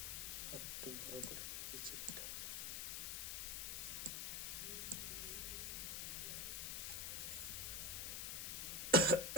আর একটু বড় করে নিই এই চিপটা।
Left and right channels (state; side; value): noise; left; hiss, 2 dB below the sound